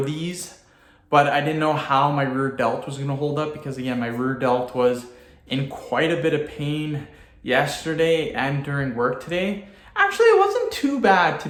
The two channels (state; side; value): identical; both; correlation 1.00